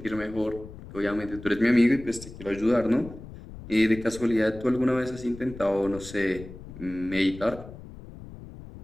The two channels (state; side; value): noise; left; rumble, 15 dB below the sound